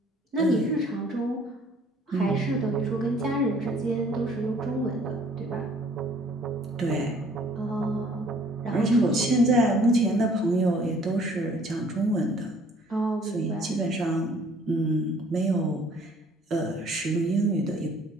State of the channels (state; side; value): normal; both; correlation 0.57